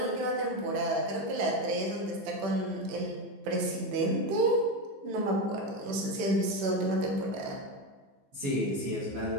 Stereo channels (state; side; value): late; left; 15 ms